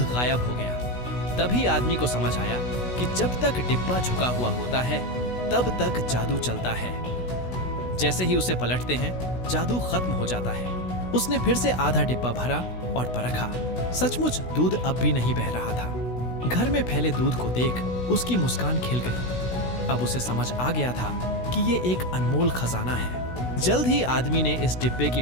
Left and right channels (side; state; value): right; late; 16 ms